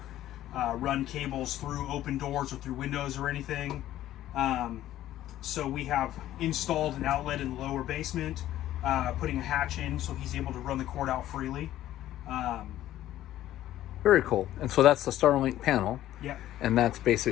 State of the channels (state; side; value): quieter; right; 13.4 dB